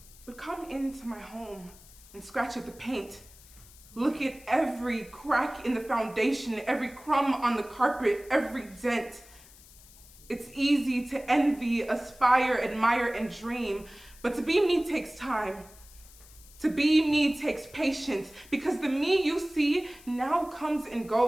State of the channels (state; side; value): noise; left; hiss, 22 dB below the sound